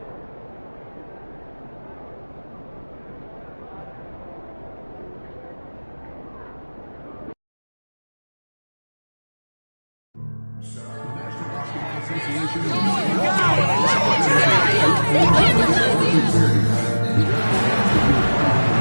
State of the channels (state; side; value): inverted; both; correlation -1.00